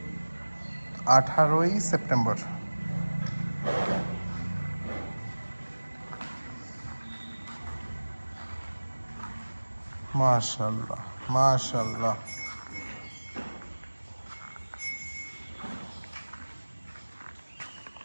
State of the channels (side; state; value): both; inverted; correlation -1.00